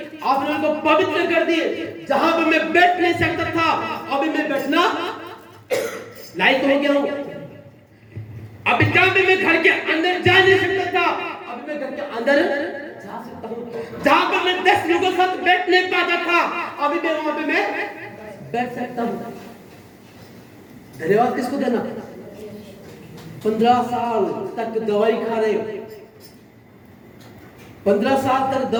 आपने मेरे को पवित्र कर दी। जहां पर मैं बैठ नहीं सकता था, अभी मैं बैठना लायक हो गया हूं। अभी जहां पे मैं घर के अंदर जा नहीं सकता था, अभी मैं घर के अंदर जा सकता हूं। जहां पर मैं 10 लोगों के साथ बैठ नहीं पाता था, अभी मैं वहां पे मैं बैठ सकता हूं। धन्यवाद किसको देना? 15 साल तक दवाई खा रहे हो, 15 साल तक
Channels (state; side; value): identical; both; correlation 1.00